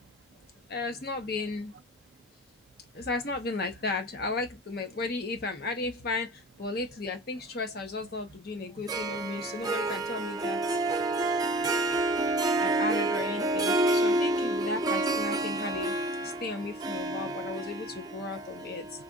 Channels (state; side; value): normal; both; correlation 0.40